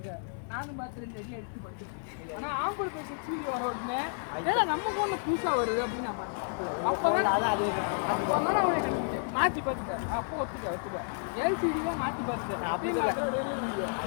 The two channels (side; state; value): right; silent; 57 dB below the other